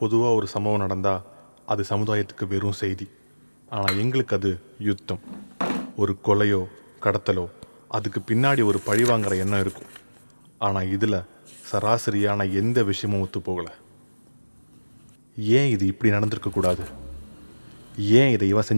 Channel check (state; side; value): inverted; both; correlation -1.00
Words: பொதுவாக ஒரு சம்பவம் நடந்தால் அது சமுதாயத்துக்கு வெறும் செய்தி. ஆனால் எங்களுக்கு அது யுத்தம். ஒரு கொலையோ கடத்தலோ அதுக்கு பின்னாடி ஒரு பழிவாங்கிற எண்ணம் இருக்கும். ஆனால் இதில் சராசரியான எந்த விஷயமும் ஒத்து போகலை. ஏன் இது இப்படி நடந்திருக்கக்கூடாது? ஏன் இதை இவன்